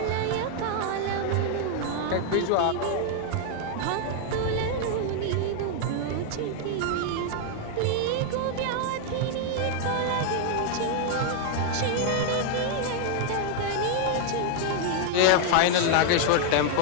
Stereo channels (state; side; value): different; both; correlation 0.00